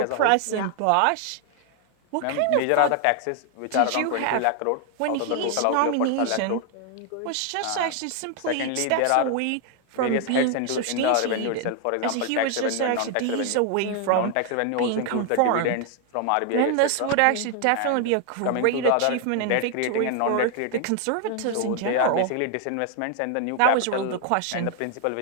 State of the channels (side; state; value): both; different; correlation 0.00